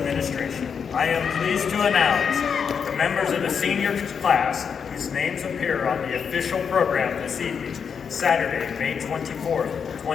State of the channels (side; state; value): right; quieter; 6.7 dB